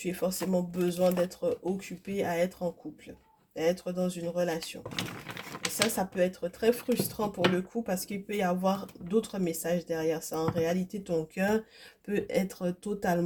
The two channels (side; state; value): both; identical; correlation 1.00